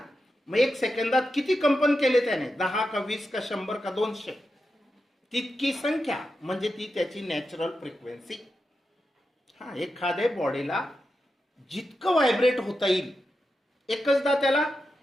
मग 1 सेकंदात किती कंपन केले त्याने? 10 का 20 का 100 का 200, तितकी संख्या म्हणजे ती त्याची नॅचरल फ्रिक्वेन्सी. एखाद्या बॉडीला जितकं व्हायब्रेट होता येईल एकचदा त्याला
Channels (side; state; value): both; normal; correlation 0.88